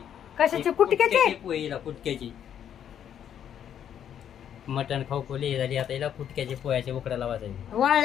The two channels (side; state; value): right; quieter; 9.4 dB